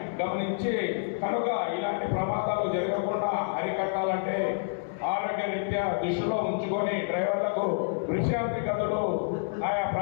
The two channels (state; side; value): silent; right; 59 dB below the other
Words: గమనించి కనుక ఇలాంటి ప్రమాదాలు జరగకుండా అరికట్టాలంటే ఆరోగ్య రీత్యా దృష్టిలో ఉంచుకొని డ్రైవర్లకు విశ్రాంతి గదులు ఆయా